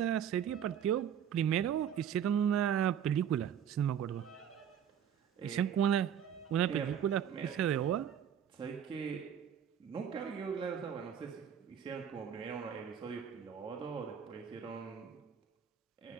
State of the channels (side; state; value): left; quieter; 8.9 dB